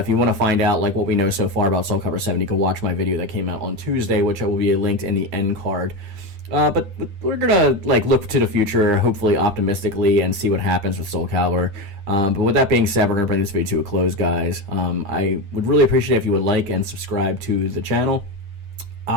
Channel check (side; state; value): left; late; 9.9 ms